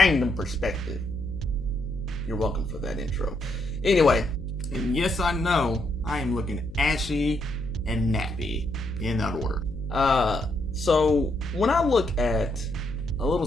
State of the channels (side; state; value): left; noise; hum, 15 dB below the sound